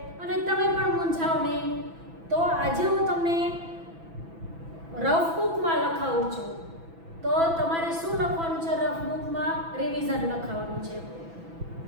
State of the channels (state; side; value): late; left; 6.0 ms